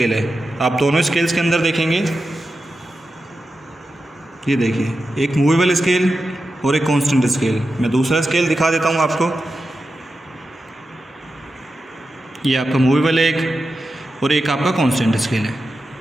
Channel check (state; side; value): normal; both; correlation 0.91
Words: है। आप दोनों स्केल्स के अंदर देखेंगे, ये देखिए एक मूवेबल स्केल और एक कांस्टेंट स्केल। मैं दूसरा स्केल दिखा देता हूँ आपको, ये आपका मूवेबल है एक और एक आपका कांस्टेंट स्केल है,